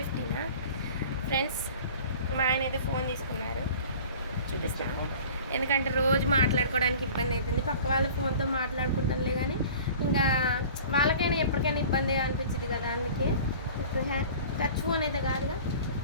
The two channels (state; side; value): inverted; both; correlation -0.43